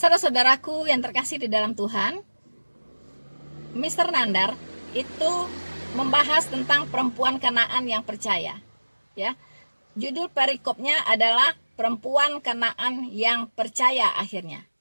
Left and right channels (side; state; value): both; inverted; correlation -1.00